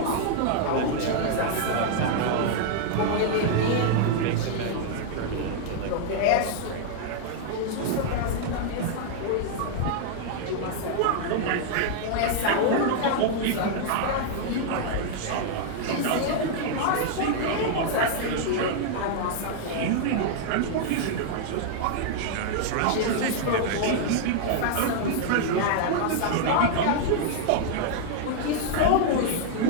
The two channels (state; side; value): different; both; correlation -0.01